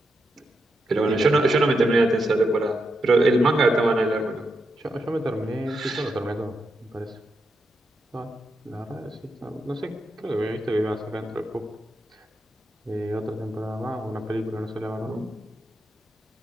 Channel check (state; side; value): normal; both; correlation 0.84